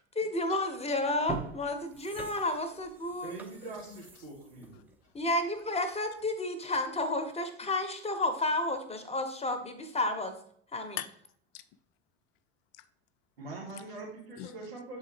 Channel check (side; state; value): both; normal; correlation -0.05